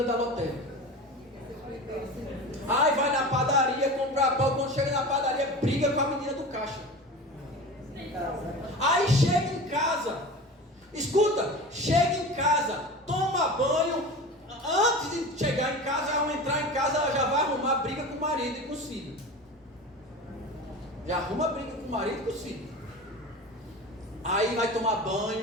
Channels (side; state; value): both; normal; correlation 0.32